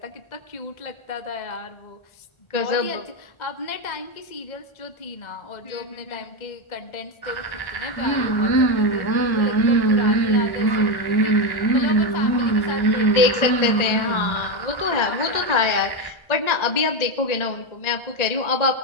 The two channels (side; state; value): right; late; 1.3 ms